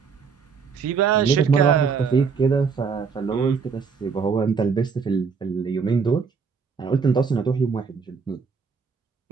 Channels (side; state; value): left; quieter; 5.7 dB